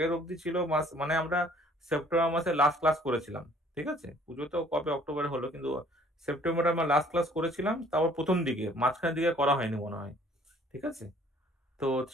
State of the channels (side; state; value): both; normal; correlation 0.57